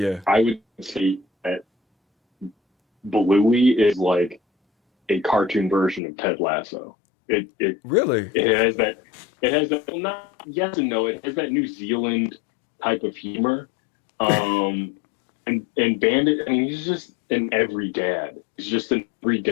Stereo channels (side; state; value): right; drops out; at 6.0 s